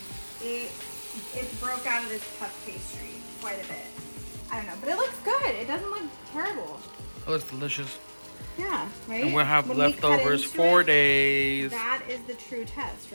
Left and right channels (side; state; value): both; inverted; correlation -1.00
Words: It broke out of this puff pastry quite a bit. I don't know, but it looks good. It doesn't look terrible. It looks delicious. Yeah, right? And we'll have When leftovers 4 days. That is the true test,